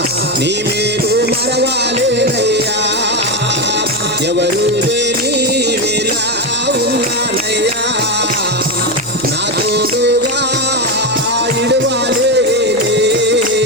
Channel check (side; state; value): right; noise; hum, 24 dB below the sound